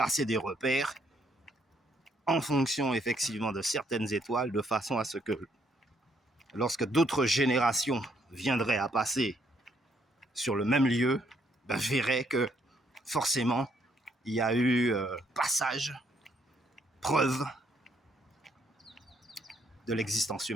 des repères en fonction effectivement de certaines étoiles, de façon à ce que lorsque d'autres générations viendraient à passer sur le même lieu, verraient que forcément il y a eu passage, preuve de l'existence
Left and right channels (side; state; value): both; normal; correlation 0.71